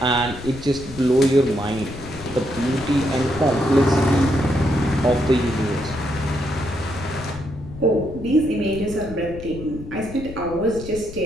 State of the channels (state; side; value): noise; left; rumble, 13 dB below the sound